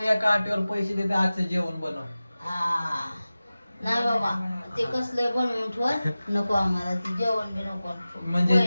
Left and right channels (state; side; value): inverted; both; correlation -0.96